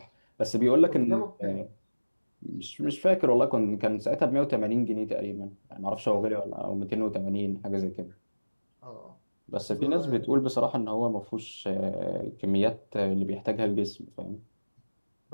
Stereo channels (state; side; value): inverted; both; correlation -1.00